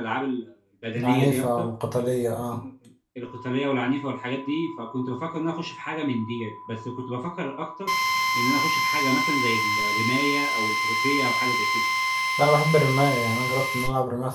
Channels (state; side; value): identical; both; correlation 1.00